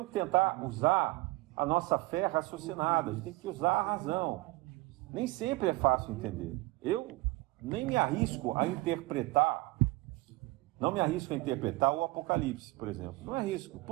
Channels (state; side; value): quieter; left; 21.2 dB